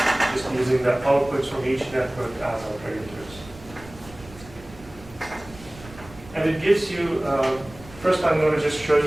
just using the outputs from each network as our predictors. And it gives you, first I'm going to just show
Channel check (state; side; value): noise; right; rumble, 19 dB below the sound